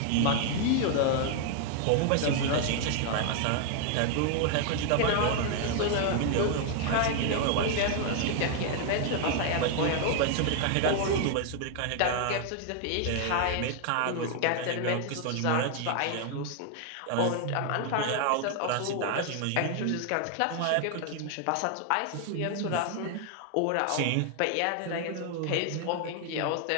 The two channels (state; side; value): different; both; correlation 0.00